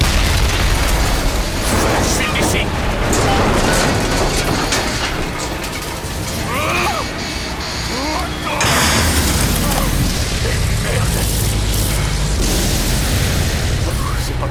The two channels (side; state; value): both; identical; correlation 1.00